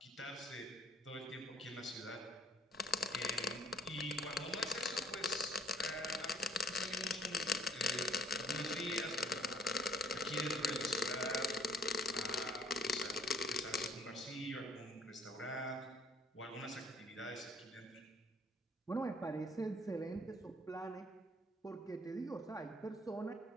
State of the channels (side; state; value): both; normal; correlation 0.57